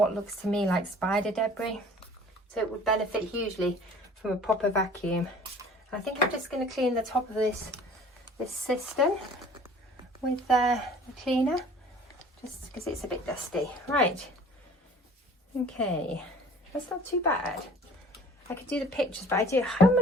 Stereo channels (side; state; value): both; normal; correlation 0.49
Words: looks to me like spider debris. So it would benefit hugely from a proper vacuum. And I think I'm just going to clean the top of this cistern with the cleaner, just because it's a bit dusty. Right, okay, that's not too bad. I could do the pictures, but how